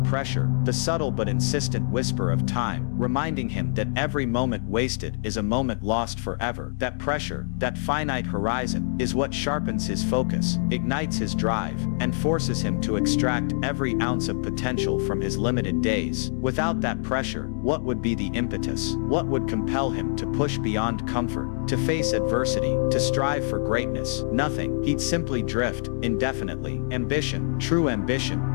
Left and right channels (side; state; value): right; silent; digital silence